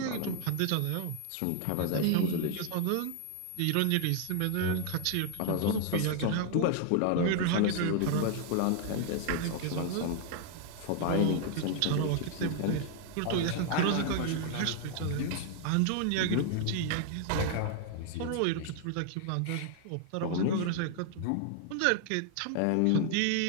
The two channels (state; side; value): different; both; correlation 0.00